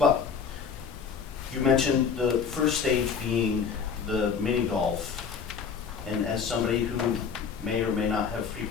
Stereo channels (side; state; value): right; quieter; 6.2 dB